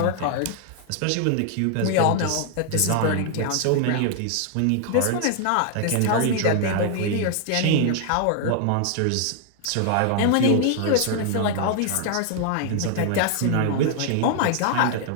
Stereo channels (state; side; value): different; both; correlation 0.00